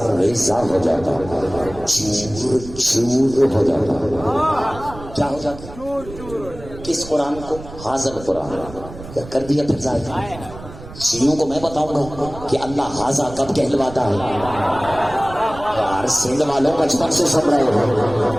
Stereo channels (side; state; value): right; noise; rumble, 15 dB below the sound